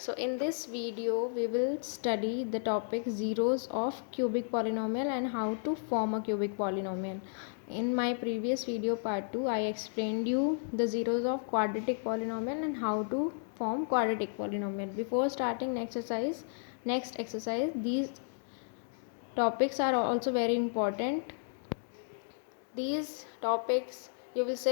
in this video we will study the topic zeros of cubic polynomial and how to form a cubic polynomial. In my previous video part 2 I explained you the zeros of quadratic polynomial and how to form quadratic polynomial. Before starting next exercise, these topics are also very important. These topics you will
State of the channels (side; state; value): right; silent; digital silence